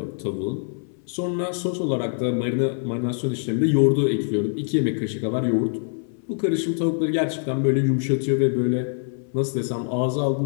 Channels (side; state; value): right; silent; 60 dB below the other